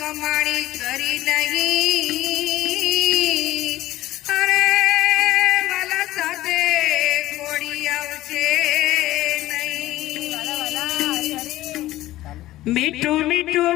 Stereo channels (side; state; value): right; quieter; 15.8 dB